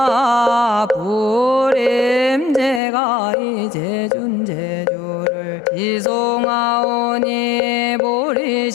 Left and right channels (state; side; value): drops out; right; at 2.8 s